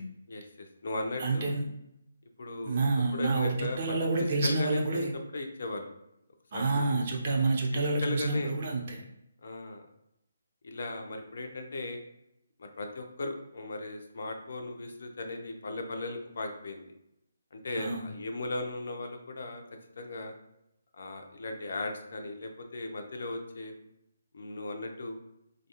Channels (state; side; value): inverted; both; correlation -0.79